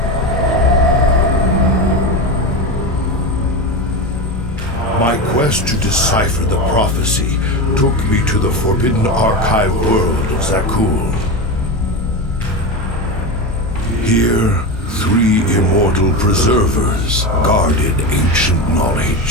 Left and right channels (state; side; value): normal; both; correlation 0.20